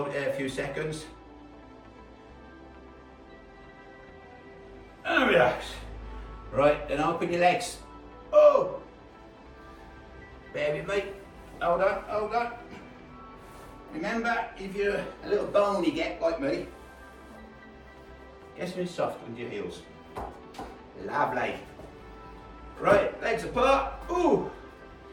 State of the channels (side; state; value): both; identical; correlation 1.00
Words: it there a few seconds. And relax. Right, then open your legs. Oh! Bear with me. Hold on, hold on. Remember, if you're a little bony get like me, get something soft with your heels. Lovely. Right, legs apart. Ooh!